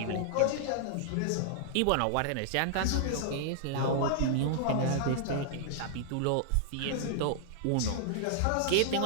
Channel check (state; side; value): different; both; correlation -0.01